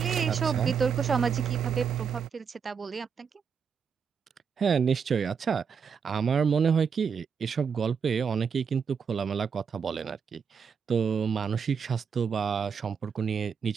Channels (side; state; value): left; quieter; 6.5 dB